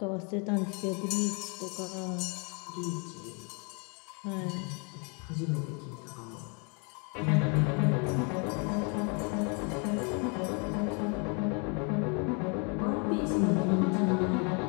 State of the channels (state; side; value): quieter; right; 34.9 dB